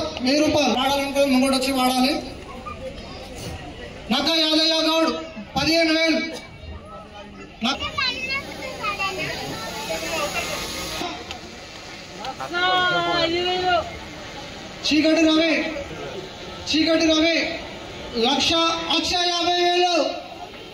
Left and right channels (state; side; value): identical; both; correlation 1.00